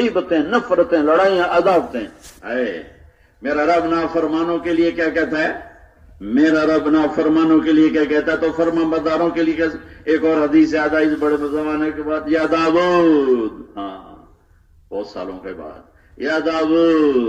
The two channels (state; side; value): identical; both; correlation 1.00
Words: نفرتیں، لڑائیاں، عداوتیں. اے میرا رب نافرمانوں کے لیے کیا کہتا ہے؟ میرا رب نافرمانوں کے لیے کیا کہتا ہے؟ تو فرما برداروں کے لیے ایک اور حدیث یاد آئی اس بڑے زمانے کے بعد، یا داؤد، ہاں بہت سالوں کے بعد، یا